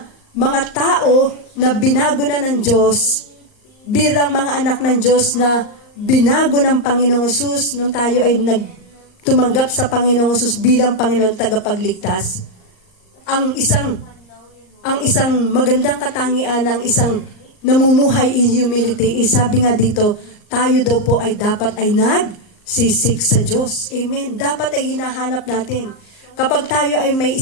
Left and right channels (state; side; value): late; right; 38 ms